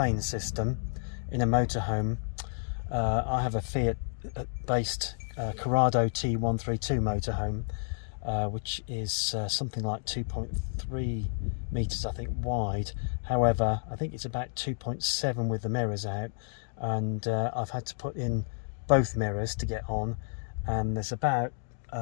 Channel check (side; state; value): right; silent; digital silence